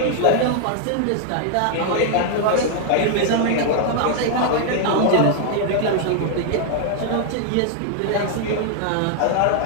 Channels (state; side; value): different; both; correlation 0.00